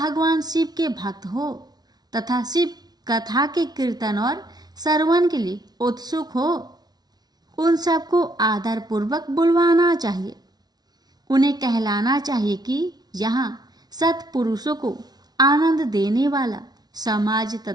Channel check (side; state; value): left; late; 0.19 ms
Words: शिव के भक्त हो तथा शिव कथा के कीर्तन और श्रवण के लिए उत्सुक हो, उन सबको आदर पूर्वक बुलवाना चाहिए। उन्हें कहलाना चाहिए कि यहाँ सत्पुरुषों को आनंद देने वाला समाज